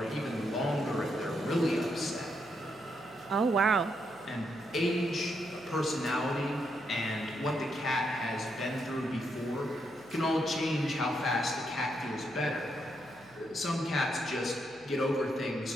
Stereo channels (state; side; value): noise; right; hum, 26 dB below the sound